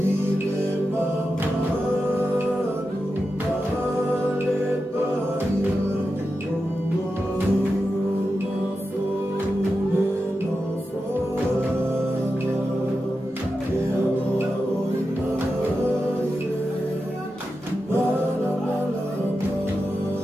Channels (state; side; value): normal; both; correlation 0.90